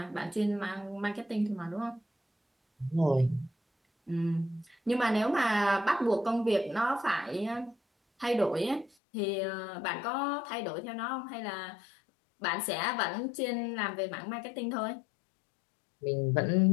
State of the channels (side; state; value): right; drops out; at 8.9 s